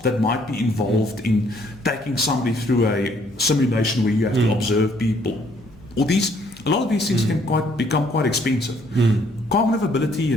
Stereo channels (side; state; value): left; noise; hum, 26 dB below the sound